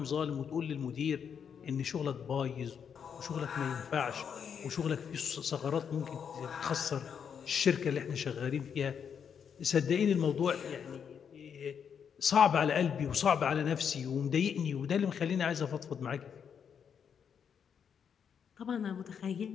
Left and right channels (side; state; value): right; quieter; 7.4 dB